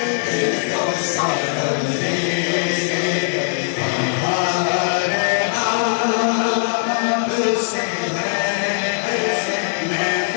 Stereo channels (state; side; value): silent; right; 61 dB below the other